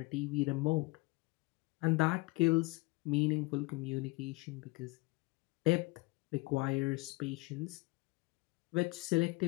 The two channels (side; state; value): right; quieter; 24.6 dB